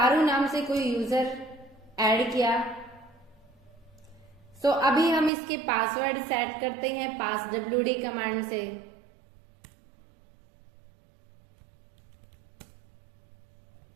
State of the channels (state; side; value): drops out; left; at 5.3 s